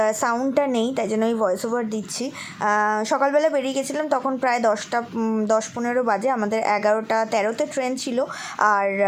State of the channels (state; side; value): identical; both; correlation 1.00